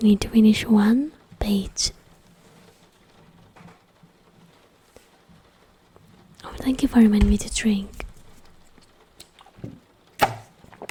need to finish one page. Oh, thank you for reminding me to drink.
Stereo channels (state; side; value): identical; both; correlation 1.00